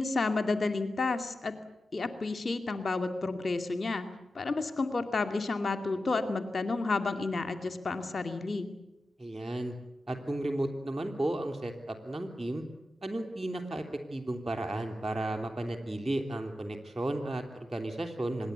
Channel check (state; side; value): normal; both; correlation 0.92